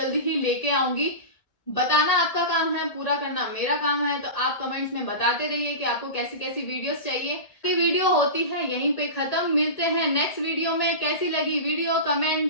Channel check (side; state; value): right; late; 1.8 ms